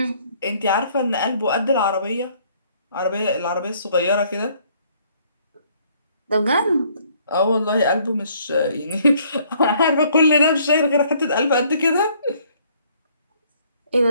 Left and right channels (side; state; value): both; inverted; correlation -0.63